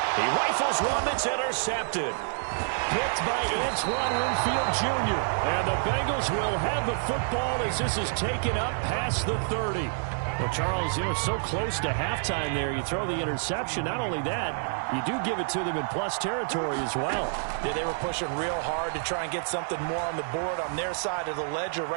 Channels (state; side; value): silent; left; digital silence